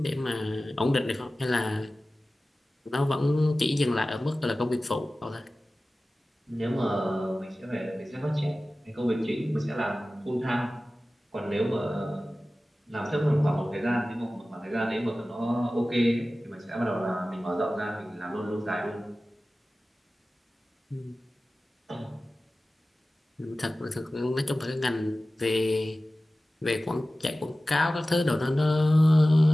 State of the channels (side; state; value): both; normal; correlation 0.96